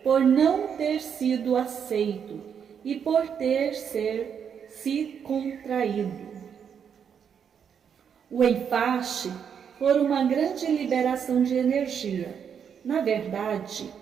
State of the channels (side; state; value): left; quieter; 7.6 dB